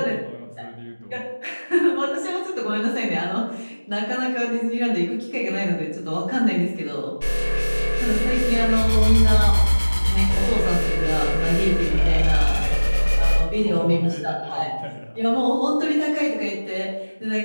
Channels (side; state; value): both; inverted; correlation -1.00